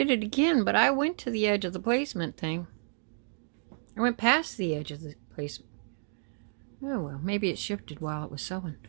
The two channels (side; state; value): left; silent; digital silence